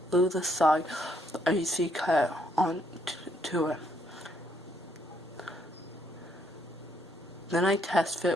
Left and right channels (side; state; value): both; normal; correlation 0.71